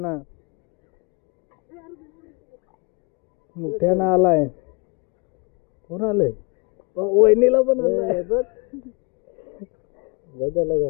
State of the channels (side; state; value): right; quieter; 31.0 dB